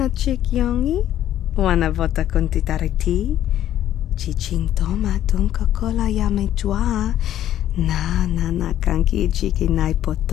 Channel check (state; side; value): quieter; right; 11.9 dB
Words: chick yongi? Wanna vota con titariti? Chichin toma ton Coca-Cola ya me chua. Na kanki chiki nai